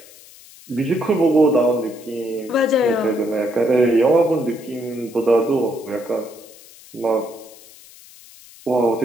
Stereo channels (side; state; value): left; noise; hiss, 22 dB below the sound